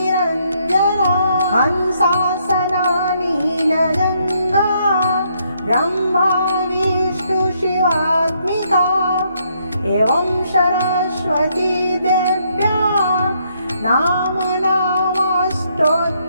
हंसासना नीलजङ्गा ब्रह्मा विष्णु शिवात्मिका एवं सरस्वती देव्या नामनामस्तोत्रं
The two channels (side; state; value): both; inverted; correlation -0.72